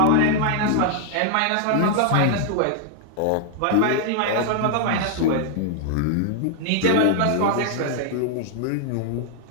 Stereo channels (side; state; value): both; different; correlation 0.00